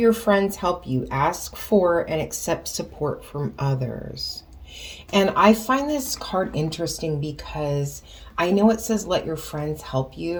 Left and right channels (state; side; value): identical; both; correlation 1.00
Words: friends help you. Ask for and accept support from others. And I find this card interesting because I know it says let your friends help